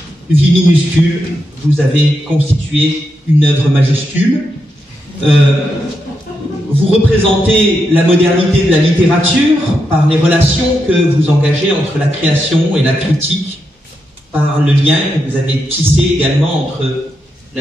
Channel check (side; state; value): both; normal; correlation 0.84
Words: vies minuscules, vous avez constitué une œuvre majuscule. Vous représentez la modernité de la littérature par les relations que vous engagez entre la création et la critique, par le lien que vous avez tissé également entre